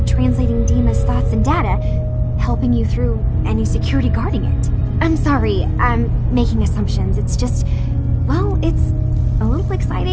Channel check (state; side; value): identical; both; correlation 1.00